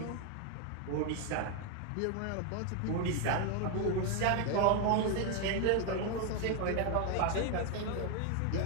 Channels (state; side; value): different; both; correlation 0.01